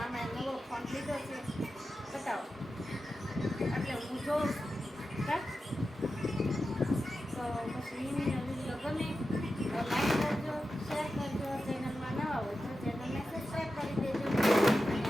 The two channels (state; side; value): normal; both; correlation 0.92